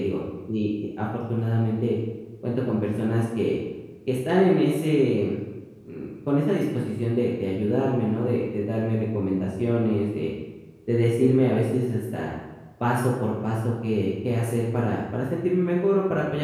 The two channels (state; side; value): identical; both; correlation 1.00